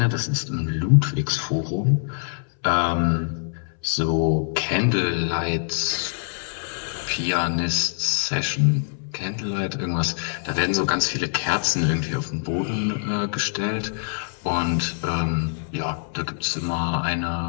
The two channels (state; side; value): silent; right; 62 dB below the other